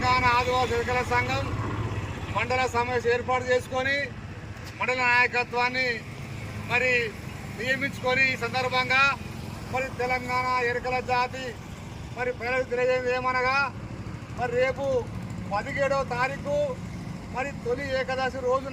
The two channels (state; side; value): identical; both; correlation 1.00